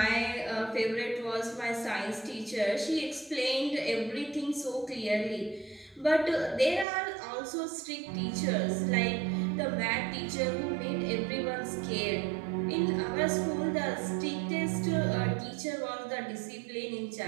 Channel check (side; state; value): left; drops out; at 6.9 s